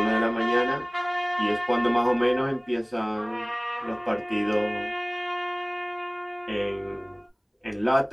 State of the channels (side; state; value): both; identical; correlation 1.00